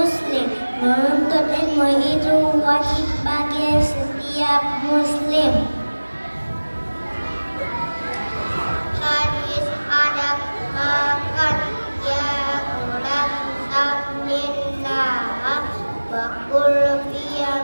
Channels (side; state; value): both; inverted; correlation -1.00